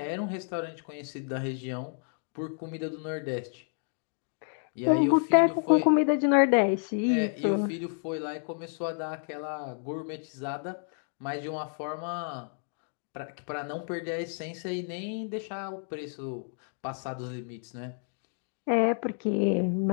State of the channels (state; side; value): silent; right; 58 dB below the other